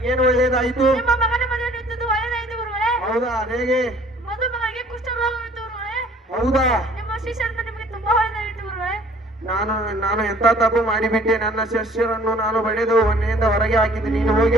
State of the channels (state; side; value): normal; both; correlation 0.55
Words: ಒಳ್ಳೆಯದಾಯಿತು? ಹೌದಾ? ಹೇಗೆ? ಹೌದಾ? ನಾನು ಎಂತ ತಪ್ಪು ಮಾಡಿಬಿಟ್ಟೆ? ನನ್ನ ಶಿಷ್ಯರನ್ನು ನಾನು ಬಡಿದು ಮನೆಯಿಂದ ಹೊರಗೆ ಹಾಕಿದ್ದೆ. ನೀನು ಹೋಗಿ